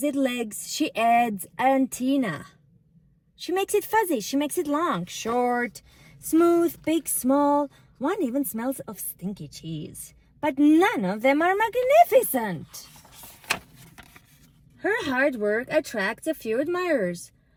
it legs. She adds antenna. She makes it fuzzy. She makes it long, short, smooth, big, small. One even smells of stinky cheese. But none of them are magnificent. Her hard work attracts a few admirers,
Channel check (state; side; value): identical; both; correlation 1.00